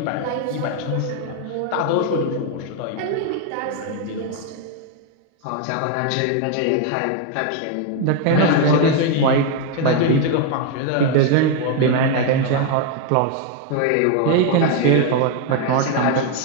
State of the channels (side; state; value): both; different; correlation 0.01